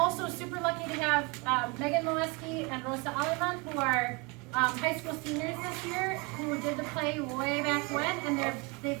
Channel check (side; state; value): left; quieter; 28.7 dB